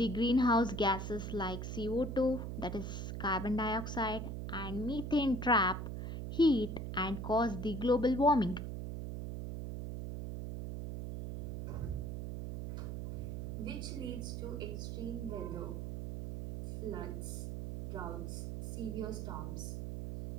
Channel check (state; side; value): noise; right; hum, 4 dB below the sound